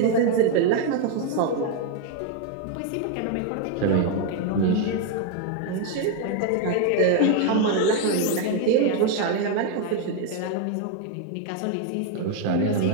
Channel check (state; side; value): different; both; correlation 0.01